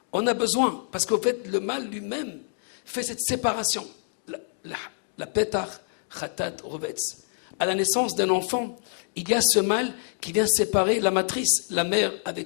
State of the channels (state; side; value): silent; right; digital silence